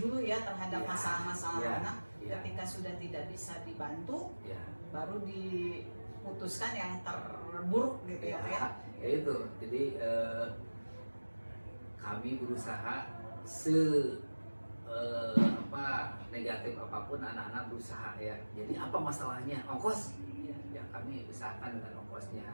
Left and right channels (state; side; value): inverted; both; correlation -1.00